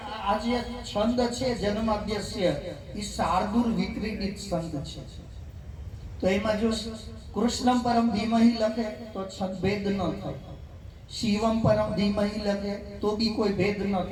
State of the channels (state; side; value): identical; both; correlation 1.00